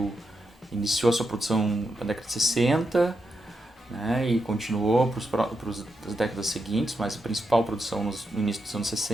que iniciou a sua produção na década de 60, né, e continuou para as décadas seguintes, mas a principal produção no início dos anos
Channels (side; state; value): both; normal; correlation 0.85